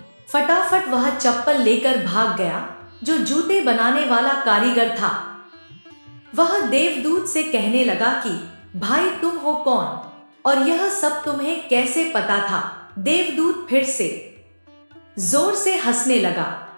फटाफट वह चप्पल लेकर भाग गया। जो जूते बनाने वाला कारीगर था वह देवदूत से कहने लगा कि भाई तुम हो कौन और यह सब तुम्हें कैसे पता था। देवदूत फिर से जोर से हंसने लगा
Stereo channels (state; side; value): inverted; both; correlation -1.00